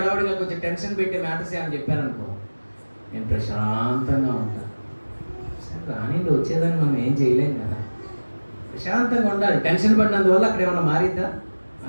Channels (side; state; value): both; inverted; correlation -1.00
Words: కొంచెం టెన్షన్ పెట్టే మ్యాటర్స్ అని చెప్పారనుకో, నేను ప్రశాంతంగా ఉంటాను. సరే రానిండి, వచ్చేదాన్ని మనం ఏం చేయలేం కదా. ప్రశాంతంగా ఉండాలి. టెన్షన్ పడినందువల్ల అక్కడ ఏమన్నా మారిద్దా?